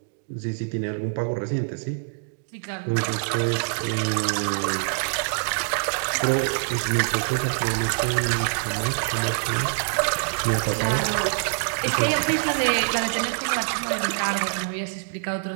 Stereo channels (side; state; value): left; silent; digital silence